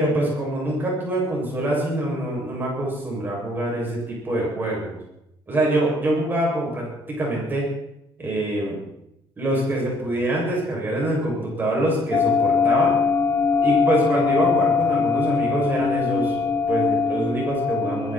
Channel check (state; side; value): normal; both; correlation 0.63